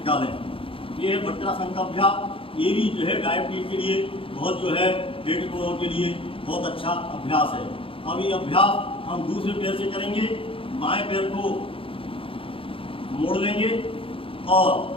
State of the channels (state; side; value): late; right; 0.26 ms